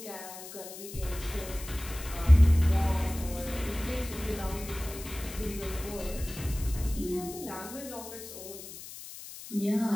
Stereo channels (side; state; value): left; noise; hiss, 13 dB below the sound